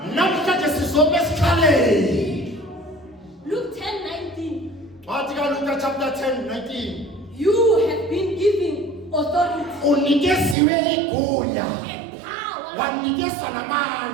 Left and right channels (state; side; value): drops out; left; at 10.6 s